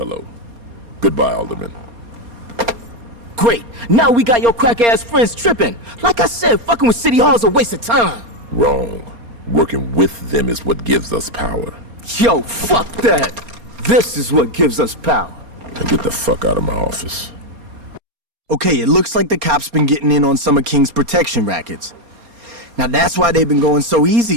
Goodbye, Alderman. Great. Now we got your crack-ass friends tripping. Like I said, fucking with City Hall's a waste of time. Wrong. Working with them is what gives us power. Yo, fuck that. This is what gives us power. Now get the fuck out of my office. Okay, it looks like the cops been getting in on some of King's protection rackets. Now that's why they've been going so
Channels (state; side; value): late; left; 4.3 ms